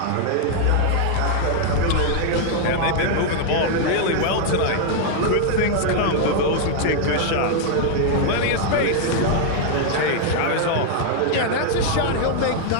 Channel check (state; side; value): different; both; correlation 0.00